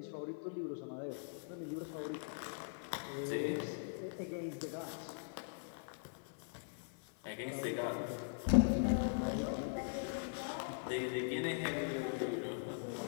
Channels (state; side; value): silent; right; 50 dB below the other